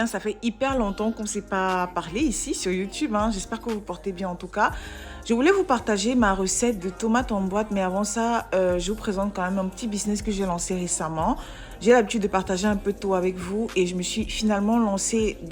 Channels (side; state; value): both; identical; correlation 1.00